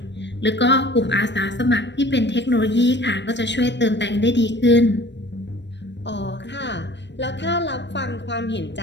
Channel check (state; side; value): late; right; 0.52 ms